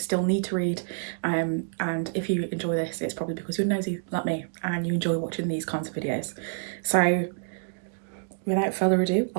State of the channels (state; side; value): silent; left; digital silence